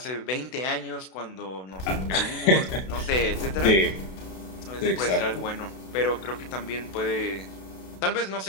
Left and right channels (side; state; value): right; late; 32 ms